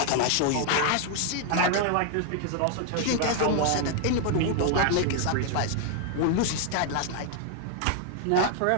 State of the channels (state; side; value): different; both; correlation 0.00